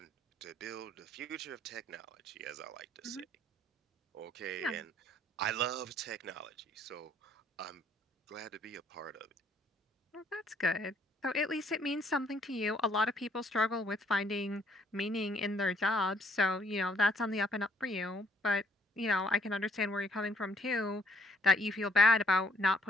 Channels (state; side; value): normal; both; correlation 0.66